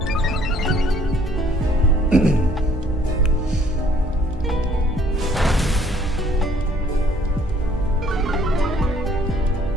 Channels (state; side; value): normal; both; correlation 0.61